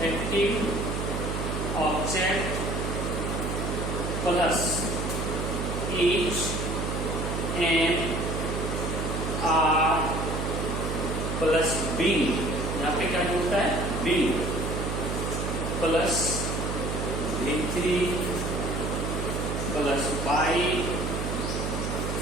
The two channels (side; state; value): right; noise; hum, 2 dB below the sound